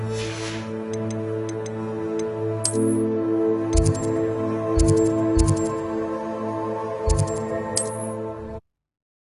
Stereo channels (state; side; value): identical; both; correlation 1.00